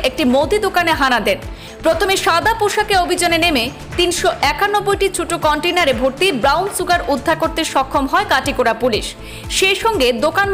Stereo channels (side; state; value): both; identical; correlation 1.00